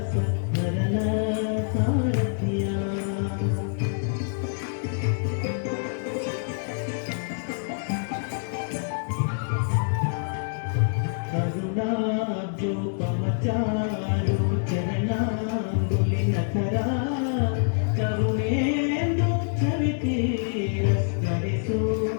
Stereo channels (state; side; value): silent; right; digital silence